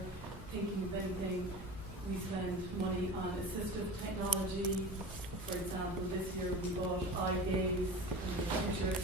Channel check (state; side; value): normal; both; correlation 0.35